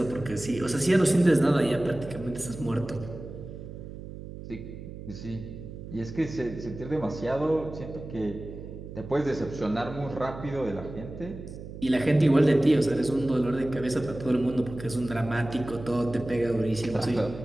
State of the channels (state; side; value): noise; right; hum, 12 dB below the sound